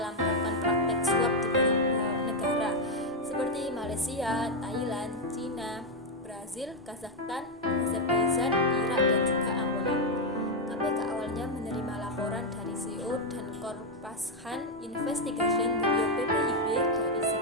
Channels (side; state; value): both; normal; correlation 0.02